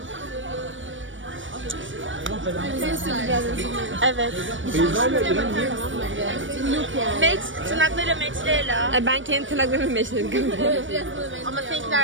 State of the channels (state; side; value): late; left; 0.56 ms